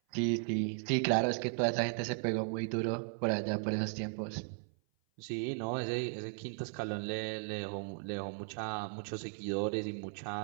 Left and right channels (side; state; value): left; silent; 54 dB below the other